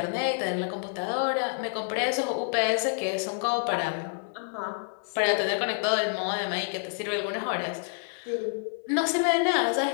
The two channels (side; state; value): right; silent; 59 dB below the other